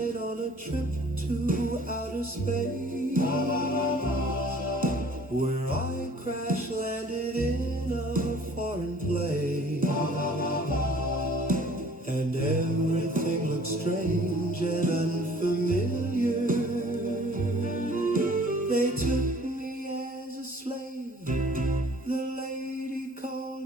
on a trip to outer space, where I crash landed in a foreign place, and everything looked strange and unfamiliar. They took me as a slave. The lady called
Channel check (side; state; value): both; normal; correlation 0.52